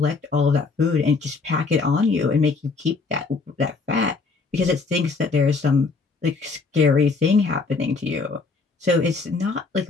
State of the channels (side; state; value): right; quieter; 4.3 dB